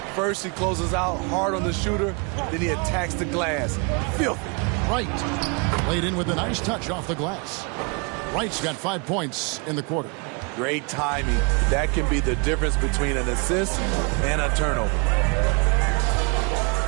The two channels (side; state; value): left; quieter; 33.3 dB